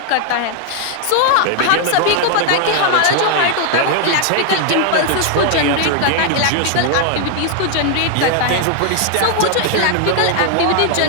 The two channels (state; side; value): different; both; correlation 0.00